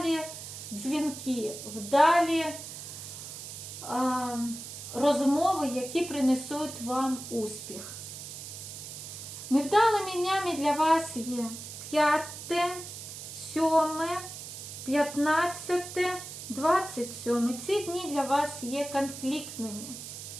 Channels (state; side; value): noise; right; hiss, 10 dB below the sound